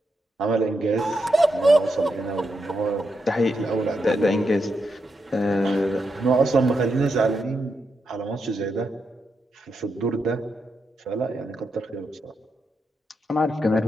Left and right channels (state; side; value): normal; both; correlation 0.83